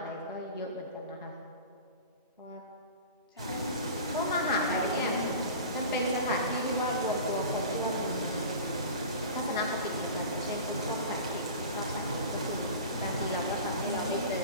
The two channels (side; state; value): both; inverted; correlation -0.35